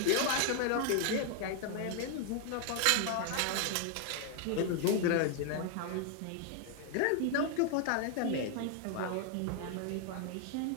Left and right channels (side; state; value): both; different; correlation 0.00